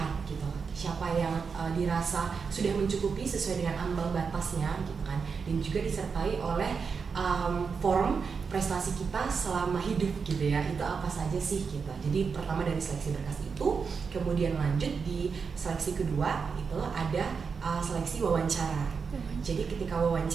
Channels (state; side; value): quieter; left; 5.6 dB